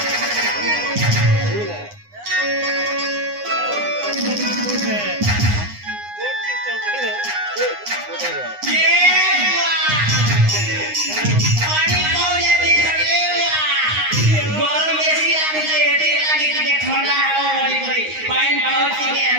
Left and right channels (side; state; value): left; late; 9.7 ms